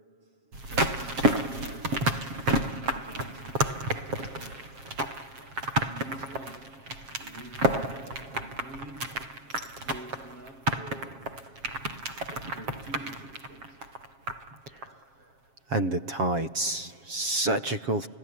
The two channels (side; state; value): left; late; 7.4 ms